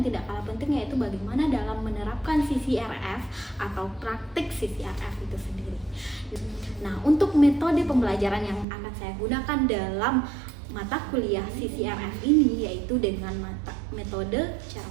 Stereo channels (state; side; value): drops out; left; at 8.7 s